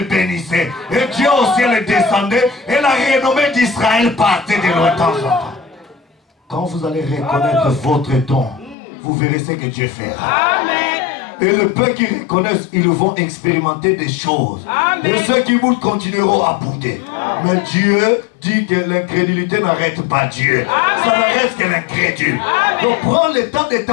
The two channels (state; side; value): drops out; right; at 8.8 s